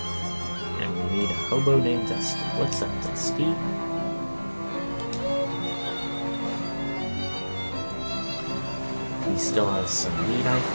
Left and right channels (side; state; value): both; inverted; correlation -1.00